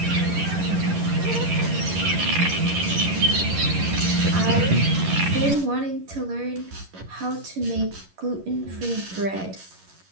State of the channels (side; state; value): left; late; 11 ms